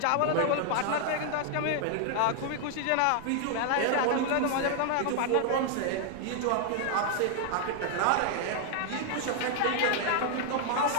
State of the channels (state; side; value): different; both; correlation 0.00